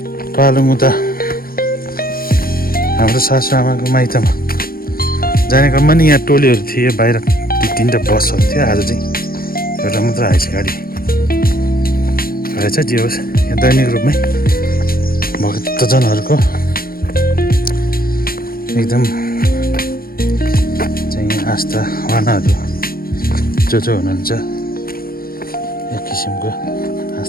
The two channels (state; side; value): late; right; 0.43 ms